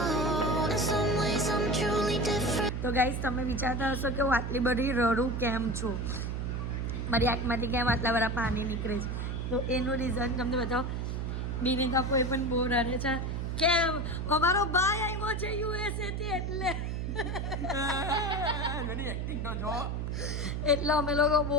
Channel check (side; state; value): right; noise; hum, 2 dB below the sound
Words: તો ગાઈઝ તમે વિચારતા હશો કે હું આટલી બધી રડું કેમ છું, મારી આંખમાંથી કેમ આટલા બધા પાણી નીકળે છે. તો એનું રીઝન તમને બતાવો. બિનિકા કોઈ પણ બહુ રડે છે કેમ અમારો ભાઈ આવ્યો છે યુએસએ થી એટલે અમે લોકો બહુ